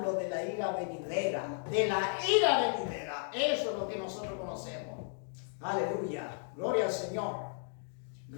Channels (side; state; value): right; silent; 55 dB below the other